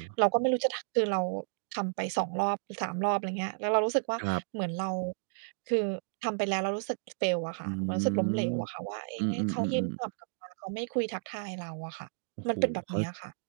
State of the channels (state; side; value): silent; left; digital silence